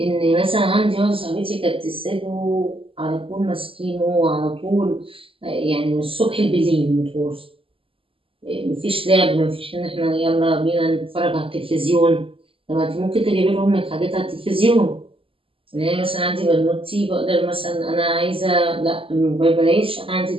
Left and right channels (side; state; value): left; late; 0.26 ms